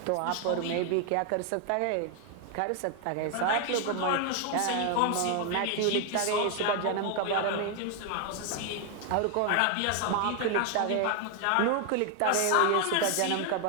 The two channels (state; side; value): different; both; correlation 0.00